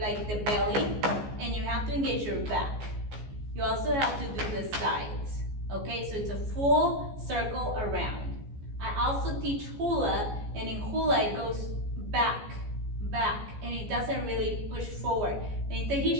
the belly, and you have to engage your back. You also have to do the sides, okay? So it's a full circle around. I also teach hula, and in hula it goes back, and it doesn't really push forward. And in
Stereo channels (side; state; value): left; late; 14 ms